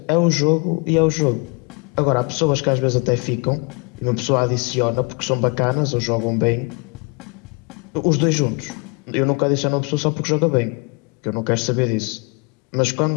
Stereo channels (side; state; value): right; quieter; 32.8 dB